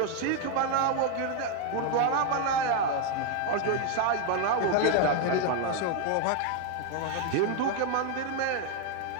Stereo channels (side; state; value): both; different; correlation 0.01